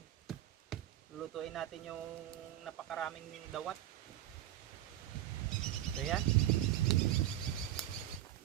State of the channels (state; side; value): quieter; left; 13.0 dB